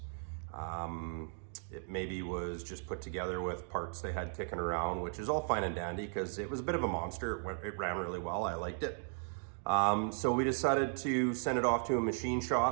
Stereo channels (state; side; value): silent; left; 54 dB below the other